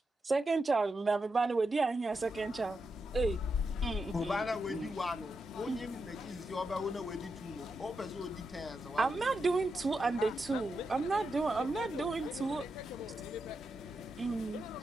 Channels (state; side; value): normal; both; correlation 0.86